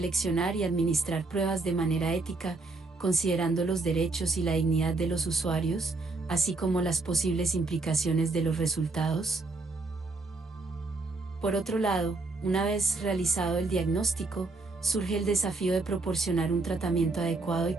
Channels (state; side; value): quieter; left; 3.5 dB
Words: y administrar pruebas de manera ética, considerando los derechos y la dignidad de los usuarios, así como las posibles implicaciones de los resultados. Por otro lado, una vez realizado el diagnóstico, surge el desafío de proporcionar un tratamiento adecuado y